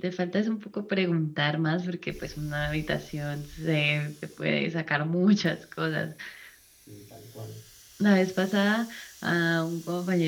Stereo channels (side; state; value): both; identical; correlation 1.00